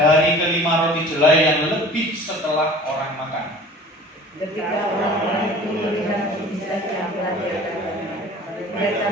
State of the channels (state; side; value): normal; both; correlation 0.44